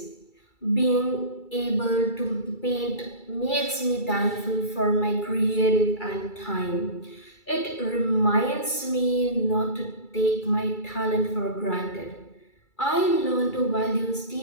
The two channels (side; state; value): right; late; 2.3 ms